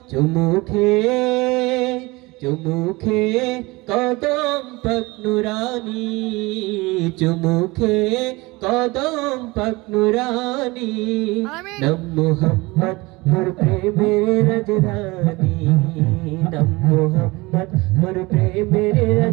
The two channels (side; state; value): left; quieter; 23.0 dB